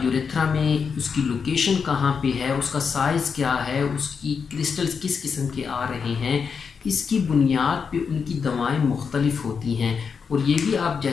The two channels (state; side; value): quieter; right; 6.0 dB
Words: यूरेथ्रा में उसकी लोकेशन कहाँ पे है, उसका साइज़ क्या है, उसकी क्रिस्टल्स किस किस्म के आ रहे हैं, इसकी बुनियाद पे उनकी दवाएं मुख्तलिफ होती हैं। और ये भी आप